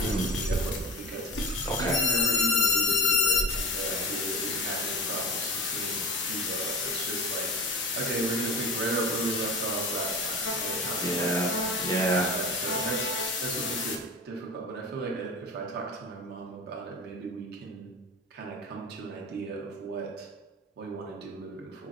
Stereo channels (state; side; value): normal; both; correlation 0.32